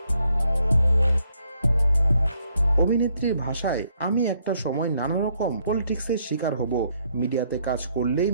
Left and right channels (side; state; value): both; inverted; correlation -0.72